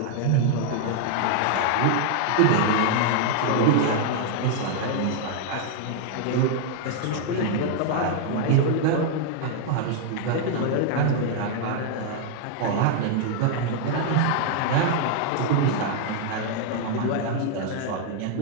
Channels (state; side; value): different; both; correlation 0.00